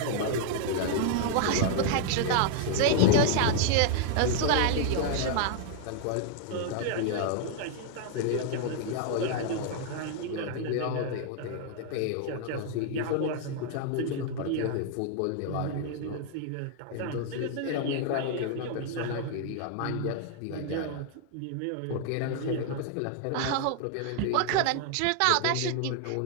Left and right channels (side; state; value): both; different; correlation 0.00